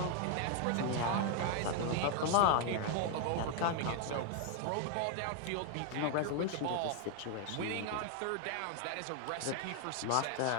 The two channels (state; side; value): different; both; correlation 0.00